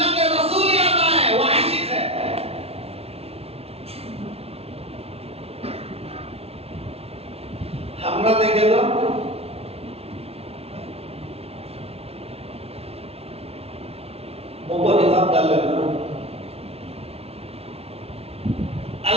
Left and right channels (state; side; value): late; left; 0.30 ms